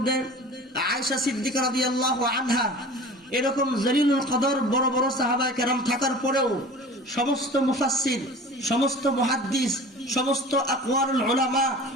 আয়েশা সিদ্দিকা রাদিয়াল্লাহু আনহা, এরকম জলিলুল কদর বড় বড় সাহাবায়ে কেরাম থাকার পরেও সমস্ত মুফাসসির, সমস্ত মুহাদ্দিস, সমস্ত আকওয়ারুল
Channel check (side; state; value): both; normal; correlation 0.40